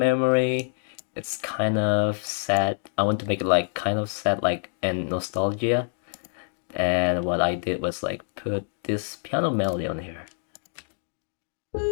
It's kind of sad. I want to make it like kind of sad, like and nostalgia. And what I did was like put this piano melody on here.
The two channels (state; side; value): silent; right; digital silence